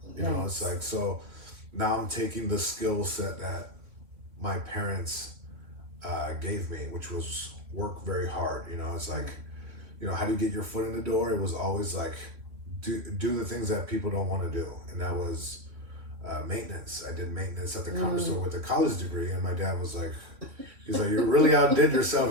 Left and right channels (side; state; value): left; late; 3.0 ms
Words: You know, it's like, so now I'm taking the skill set that my parents gave me, which was work very hard. You know, it's like, you know, how do you get your foot in the door? It was always like, do the things that people don't want to do. And that was maintenance. I did maintenance at the Comedy Store with a college degree. And my dad was like, he's like, you really outdid